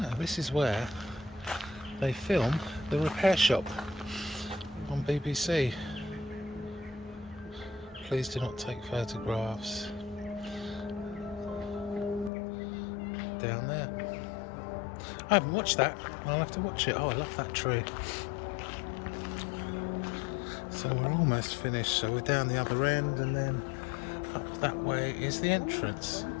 This is where they film The Repair Shop on BBC. Please do not take photographs. Down there. I haven't watched that. I'll have to watch it. Oh, I love that tree. So we're almost finished. So we're down the other end, and then up that way is the entrance.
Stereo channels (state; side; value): drops out; right; at 12.3 s